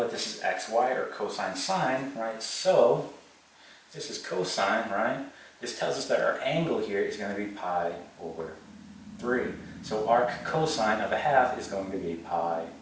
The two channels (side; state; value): both; identical; correlation 1.00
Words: this is xy, or cosine sine, right? So this is cosine, right? This tells us that our angle here is going to be pi over 3. So arc cosine of a half is going to be pi